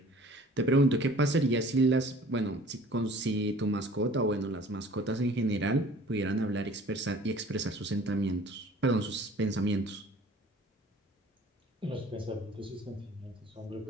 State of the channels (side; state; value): both; normal; correlation 0.49